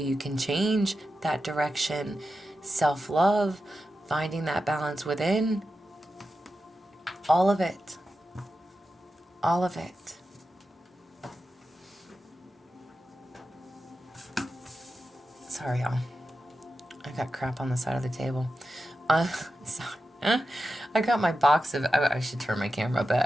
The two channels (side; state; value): both; normal; correlation 0.90